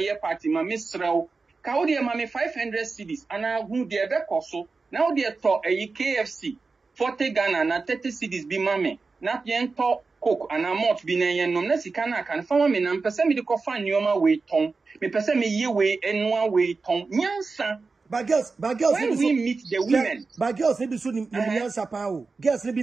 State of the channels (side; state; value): left; quieter; 4.2 dB